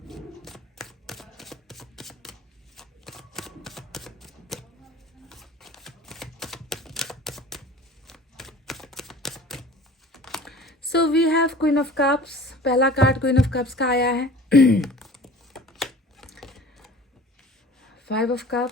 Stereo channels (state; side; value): normal; both; correlation 0.44